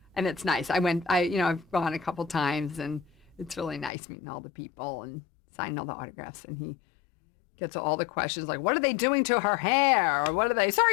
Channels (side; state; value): right; drops out; at 3.9 s